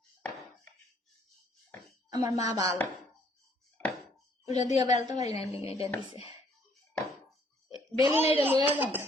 আমার মা ভালো ওটা দিয়ে বেলতে পারি না এটা দিছে বেলি না এটা লইয়া যান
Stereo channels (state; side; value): normal; both; correlation 0.64